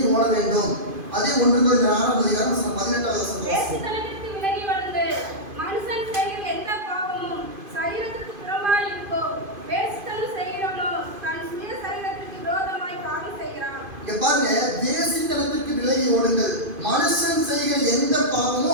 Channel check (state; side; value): late; left; 2.5 ms